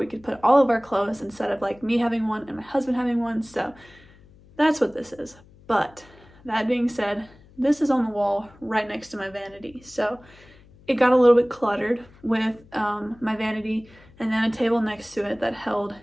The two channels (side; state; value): left; noise; hum, 26 dB below the sound